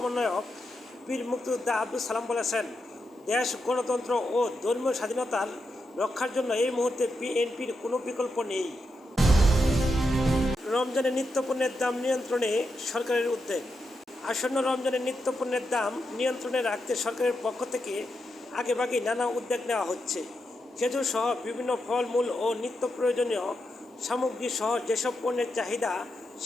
বীর মুক্তিযোদ্ধা আব্দুস সালাম বলেছেন, দেশ গণতন্ত্র ও ধর্মীয় স্বাধীনতার রক্ষার জন্য এই মুহূর্তে বিএনপির কোনো বিকল্প নেই। রমজানের নিত্যপণ্যের দাম নিয়ন্ত্রণে সরকারের উদ্যোগ। আসন্ন রমজানের নিত্যপণ্যের দাম নিয়ন্ত্রণে রাখতে সরকারের পক্ষ থেকে আগেভাগেই নানা উদ্যোগ নেওয়া হচ্ছে। খেজুর সহ বিভিন্ন ফলমূল ও নিত্য প্রয়োজনীয় সামগ্রী সহ যেসব পণ্যের চাহিদা,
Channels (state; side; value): normal; both; correlation 0.85